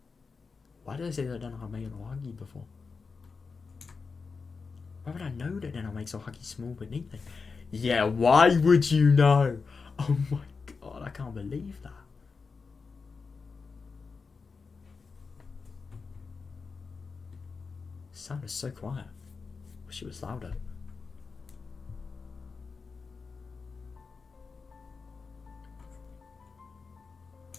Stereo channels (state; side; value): quieter; right; 4.8 dB